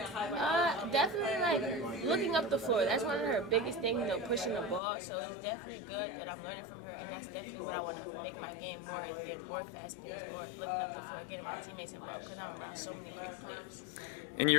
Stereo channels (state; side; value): drops out; right; at 4.8 s